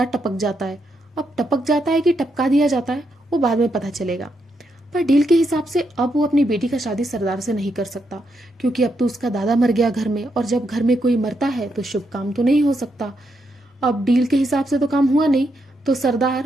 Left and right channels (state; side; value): normal; both; correlation 0.80